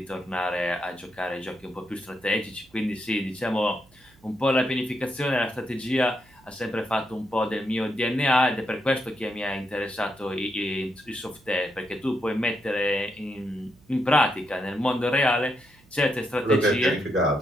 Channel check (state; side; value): noise; right; hum, 29 dB below the sound